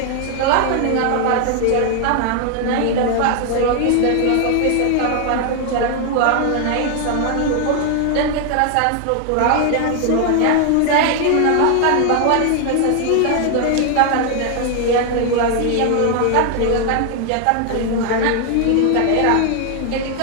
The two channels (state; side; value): different; both; correlation 0.00